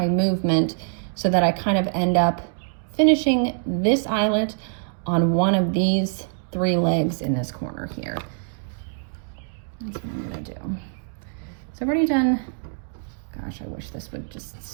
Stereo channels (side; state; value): left; silent; digital silence